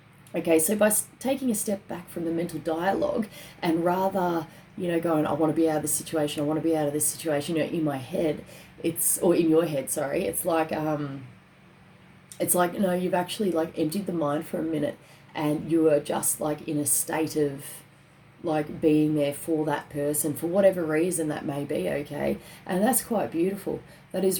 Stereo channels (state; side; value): identical; both; correlation 1.00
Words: Okay, so by taking a step back from the mental dialogue and rather, going, I want to be out of this situation, I want to be out of this situation, in my head, or in your head, sorry, it's like, you've actually like emptied the mind for a minute and you are just like in a state of like being there for that person for whatever reason that may be, okay? And that's quite beautiful. That